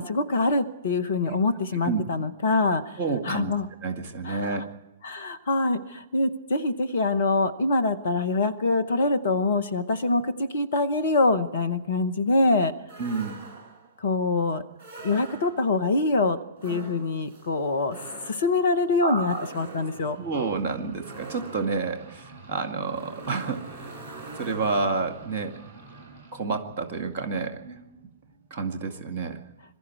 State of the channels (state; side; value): inverted; both; correlation -0.49